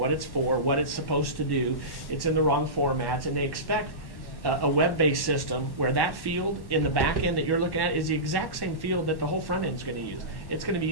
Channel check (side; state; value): right; late; 1.1 ms